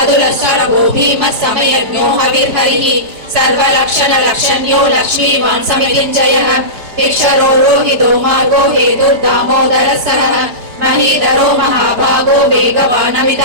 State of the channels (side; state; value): left; late; 5.0 ms